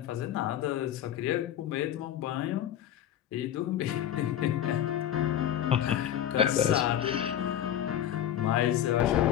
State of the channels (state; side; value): quieter; right; 11.0 dB